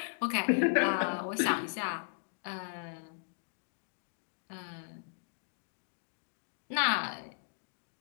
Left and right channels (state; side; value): silent; right; digital silence